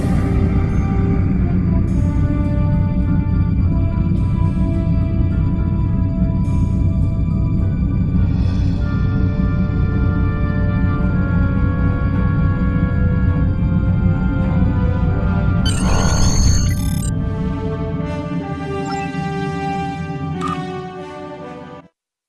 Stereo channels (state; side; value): identical; both; correlation 1.00